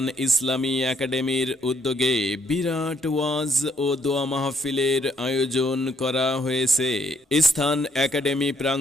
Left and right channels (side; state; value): both; normal; correlation 0.69